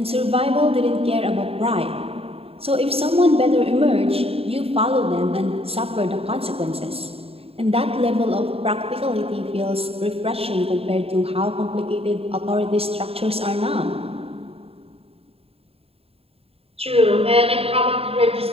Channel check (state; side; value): late; left; 0.28 ms